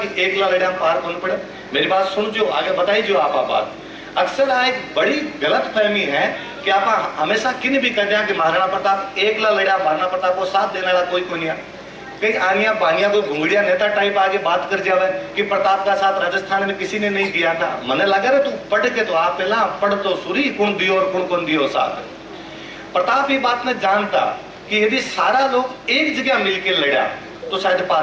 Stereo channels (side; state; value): both; identical; correlation 1.00